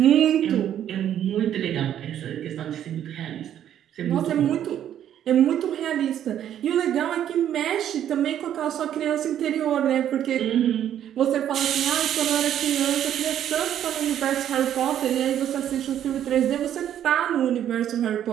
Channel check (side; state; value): left; quieter; 10.5 dB